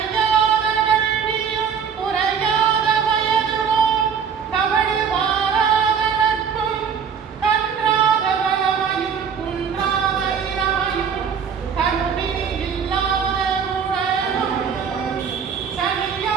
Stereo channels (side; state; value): left; quieter; 7.0 dB